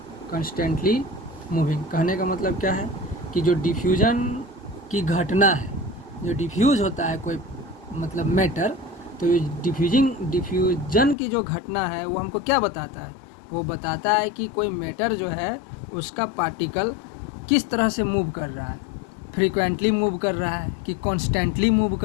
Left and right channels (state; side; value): drops out; right; at 11.2 s